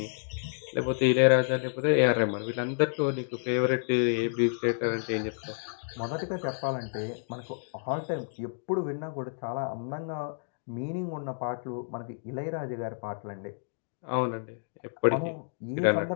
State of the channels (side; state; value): right; silent; digital silence